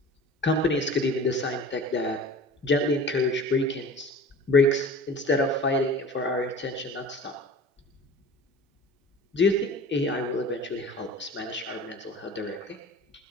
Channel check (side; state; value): both; normal; correlation 0.40